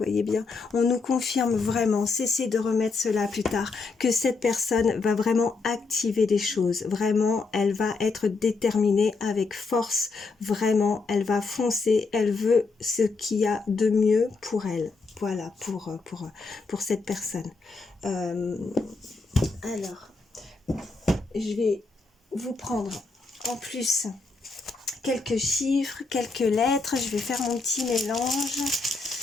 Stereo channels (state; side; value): quieter; right; 4.1 dB